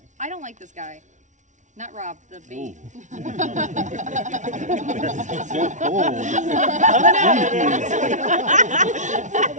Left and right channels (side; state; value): left; late; 0.36 ms